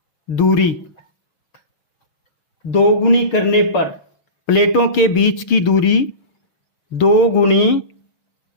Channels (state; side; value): late; right; 6.6 ms